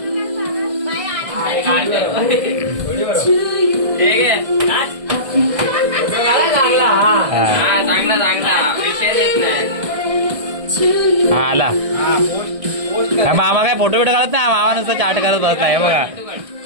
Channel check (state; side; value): late; left; 1.6 ms